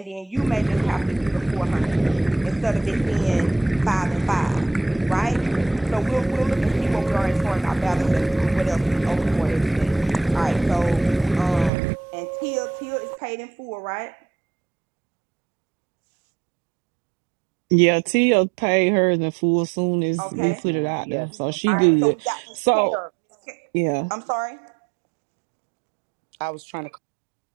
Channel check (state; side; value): drops out; left; at 11.7 s